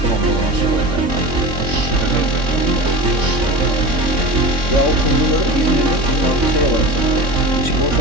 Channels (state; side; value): late; left; 3.6 ms